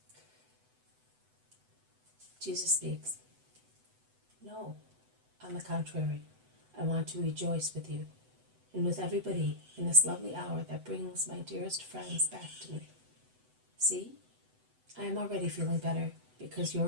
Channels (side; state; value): left; late; 8.0 ms